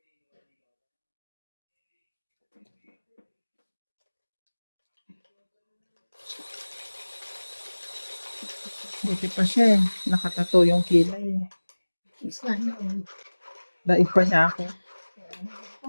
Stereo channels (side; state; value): both; inverted; correlation -1.00